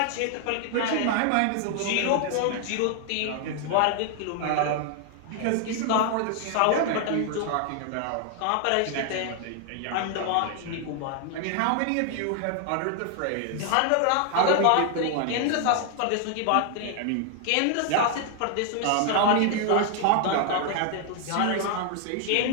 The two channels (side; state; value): both; different; correlation 0.00